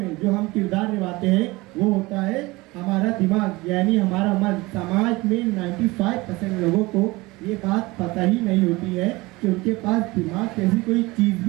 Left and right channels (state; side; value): quieter; left; 21.9 dB